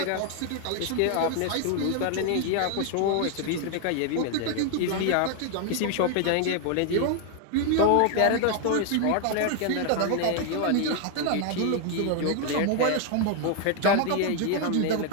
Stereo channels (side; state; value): both; different; correlation 0.01